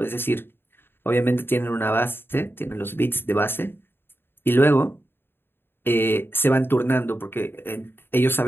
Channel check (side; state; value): right; late; 0.10 ms